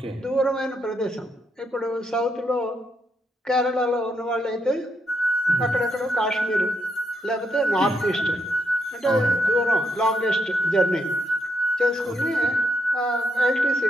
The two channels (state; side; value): normal; both; correlation 0.79